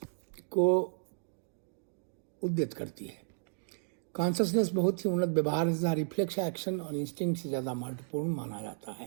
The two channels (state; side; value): silent; left; digital silence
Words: को उद्यत करती है। कॉन्शसनेस बहुत ही उन्नत व्यवहार तथा रिफ्लेक्स एक्शन और इंस्टिंक्ट से ज़्यादा महत्वपूर्ण माना जाता